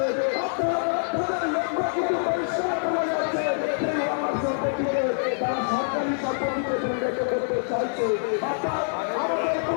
তাদের লক্ষ্য কিন্তু পরিষ্কার করা যাচ্ছে, সেই ওয়াকাফ সম্পত্তিকে তারা সরকারি সম্পত্তিতে পরিণত করতে চাইছে। অর্থাৎ আমাদের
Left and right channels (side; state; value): right; silent; digital silence